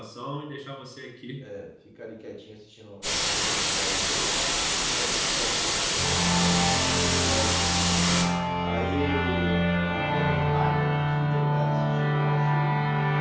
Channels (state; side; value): identical; both; correlation 1.00